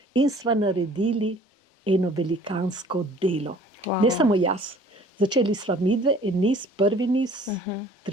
in sva naredili eno velikansko delo. Wow. Ne samo jaz. Začeli sva midve, en niz, prvi niz,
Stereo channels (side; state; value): both; normal; correlation 0.52